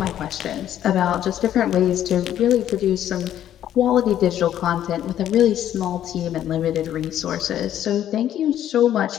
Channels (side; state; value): right; quieter; 11.2 dB